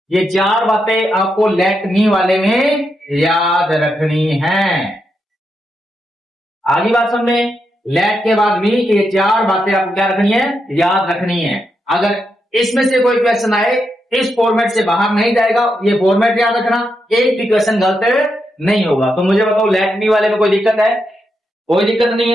ये चार बातें आपको लेट मी वाले में याद रखनी है। आगे बात समझे, लेट के बाद भी ये चार बातें आपको क्या रखनी है, याद रखनी है। अगर इसमें से कोई क्वेश्चन आए इस फॉर्मेट से बाहर नहीं जाएगा, ये फॉर्मेट याद रखना, एक भी क्वेश्चन गलत नहीं होगा। तो मुझे बताओ लेट मी वाले में कोई दिक्कत है, कोई दिक्कत नहीं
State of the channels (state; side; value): normal; both; correlation 0.84